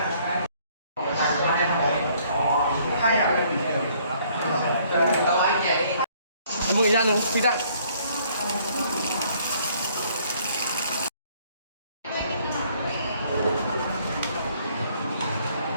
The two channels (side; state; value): both; inverted; correlation -0.63